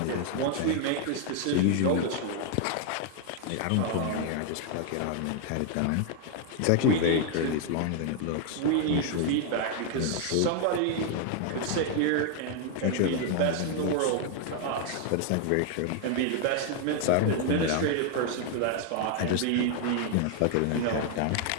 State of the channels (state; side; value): different; both; correlation 0.00